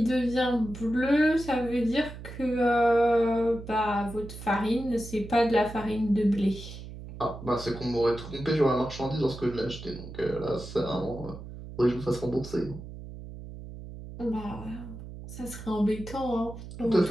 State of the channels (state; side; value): noise; right; hum, 12 dB below the sound